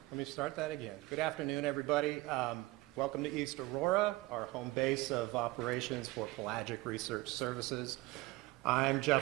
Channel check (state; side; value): quieter; left; 20.7 dB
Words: me start that again. Good afternoon, everybody. Welcome to East Aurora, our home base of operations for Pelagic Research Services. I'm